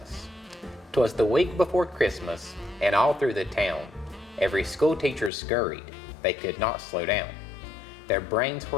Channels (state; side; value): drops out; right; at 5.3 s